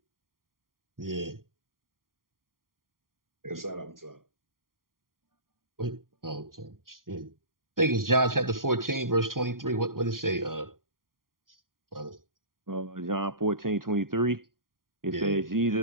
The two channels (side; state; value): left; late; 0.91 ms